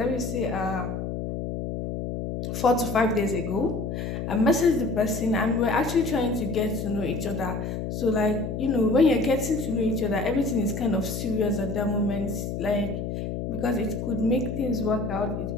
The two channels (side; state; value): left; noise; hum, 4 dB below the sound